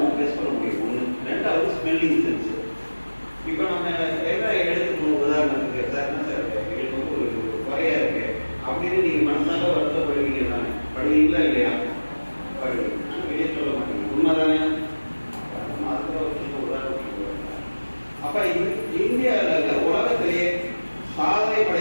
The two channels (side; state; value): both; inverted; correlation -1.00